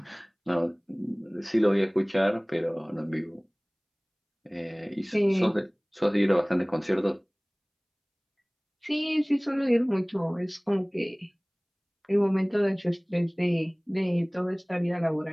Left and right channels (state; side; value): identical; both; correlation 1.00